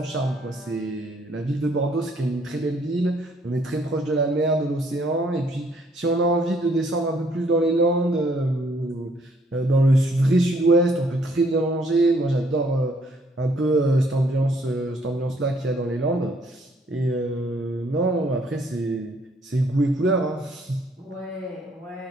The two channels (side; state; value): both; normal; correlation 0.66